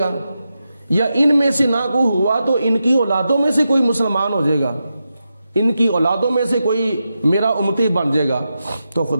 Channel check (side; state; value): both; inverted; correlation -0.89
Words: یا ان میں سے نہ کوئی ہوا تو ان کی اولادوں میں سے کوئی مسلمان ہو جائے گا، ان کی اولادوں میں سے کوئی میرا امتی بن جائے گا۔ تو